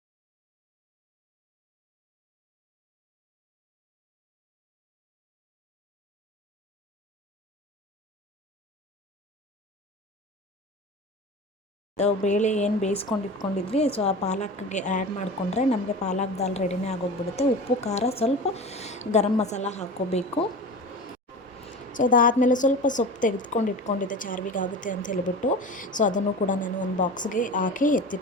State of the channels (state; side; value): normal; both; correlation 0.33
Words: ಬೇಳೆ ಏನು ಬೇಯಿಸ್ಕೊಂಡು ಇಟ್ಕೊಂಡಿದ್ವಿ, ಸೊ ಆ ಪಾಲಕ್ಗೆ ಆ್ಯಡ್ ಮಾಡಿಕೊಂಡ್ರೆ ನಮಗೆ ಪಾಲಕ್ ದಾಲ್ ರೆಡಿನೇ ಆಗೋಗ್ಬಿಡುತ್ತೆ. ಉಪ್ಪು, ಖಾರ, ಸ್ವಲ್ಪ ಗರಂ ಮಸಾಲ ಹಾಕ್ಕೋಬೇಕು. ಸೊ ಅದಾದಮೇಲೆ ಸ್ವಲ್ಪ ಸೊಪ್ಪು ತೆಗೆದುಕೊಂಡು ಇಟ್ಕೊಂಡಿದ್ದೆ, ಚಾರ್ವಿಗೆ ಆಗುತ್ತೆ ಅಂತ ಹೇಳಿಬಿಟ್ಟು. ಸೊ ಅದನ್ನು ಕೂಡ ನಾನು ಒಂದು ಬಾಕ್ಸ್ಗೆ ಹಾಕಿ